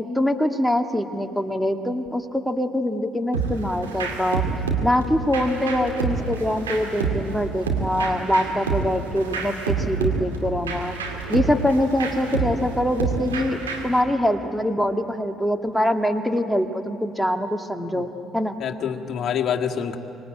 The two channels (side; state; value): both; normal; correlation 0.76